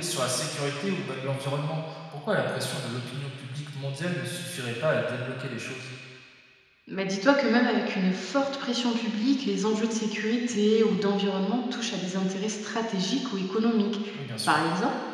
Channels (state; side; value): identical; both; correlation 1.00